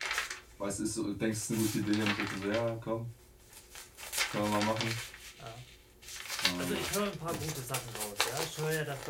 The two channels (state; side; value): identical; both; correlation 1.00